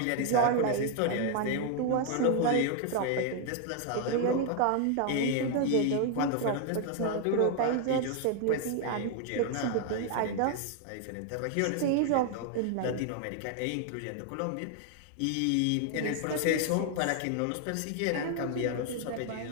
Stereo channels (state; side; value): different; both; correlation 0.00